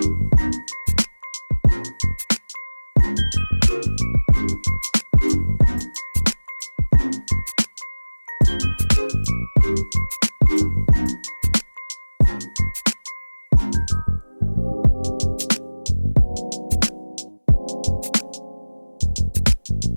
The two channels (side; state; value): both; inverted; correlation -1.00